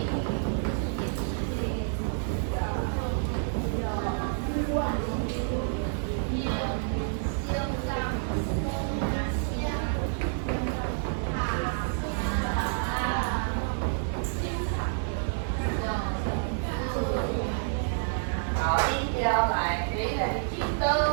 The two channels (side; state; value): left; silent; digital silence